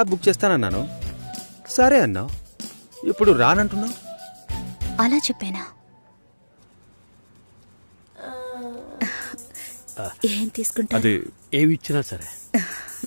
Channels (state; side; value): inverted; both; correlation -1.00